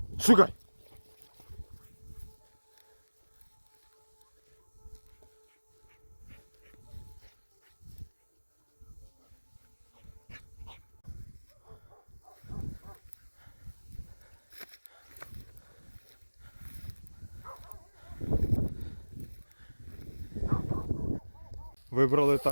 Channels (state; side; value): inverted; both; correlation -1.00